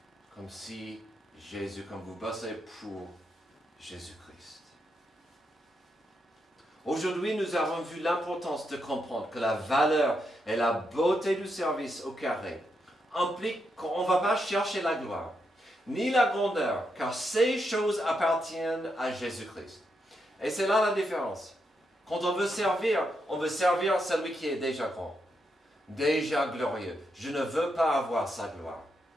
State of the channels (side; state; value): both; normal; correlation 0.82